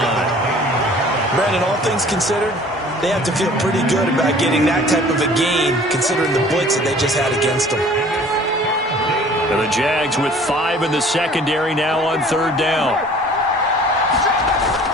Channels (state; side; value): normal; both; correlation 0.50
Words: Brandon, all things considered, they have to feel pretty good about getting that type of a gain, considering the blitz that they just had against them. And the Jags with 5 in the secondary now on 3rd down.